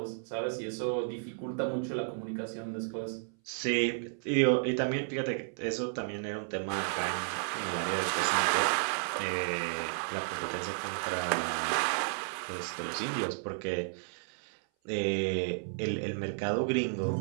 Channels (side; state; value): left; silent; 56 dB below the other